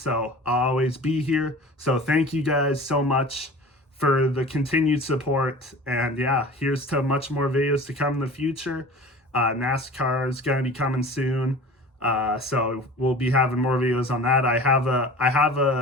I'll always be here. So thank you guys so much for the continued support. And yeah, here's to much more videos to come in the future. NASCAR is going to be coming soon. So we'll be having more videos on that. I have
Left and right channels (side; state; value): both; normal; correlation 0.39